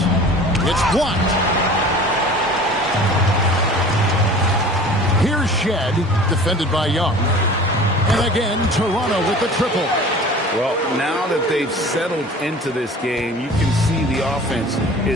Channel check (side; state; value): both; normal; correlation 0.42